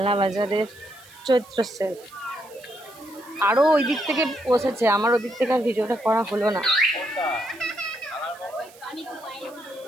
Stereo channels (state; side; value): noise; right; hiss, 24 dB below the sound